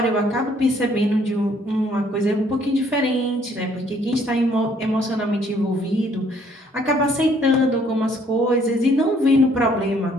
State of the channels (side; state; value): both; normal; correlation 0.63